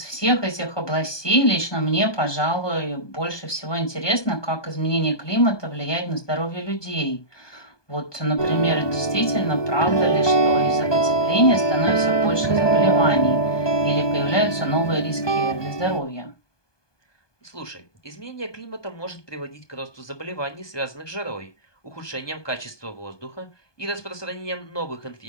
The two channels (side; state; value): right; late; 1.2 ms